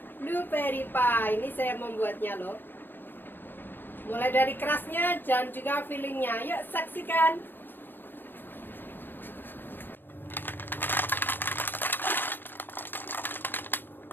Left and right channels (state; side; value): late; right; 0.095 ms